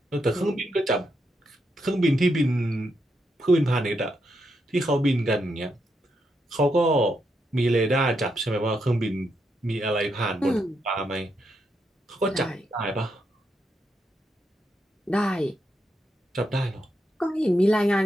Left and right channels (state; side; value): normal; both; correlation 0.81